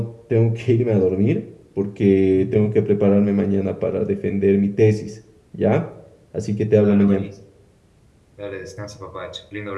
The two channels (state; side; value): identical; both; correlation 1.00